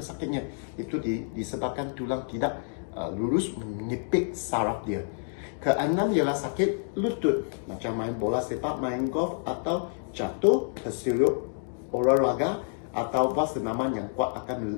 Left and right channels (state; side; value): silent; right; digital silence